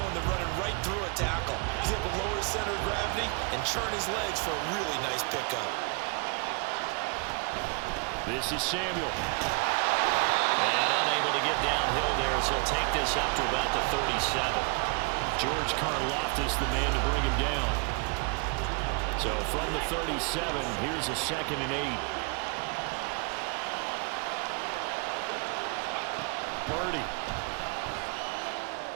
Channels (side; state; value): left; quieter; 34.3 dB